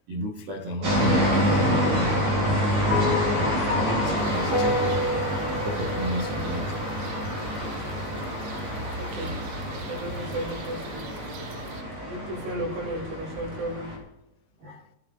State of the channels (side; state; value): left; late; 19 ms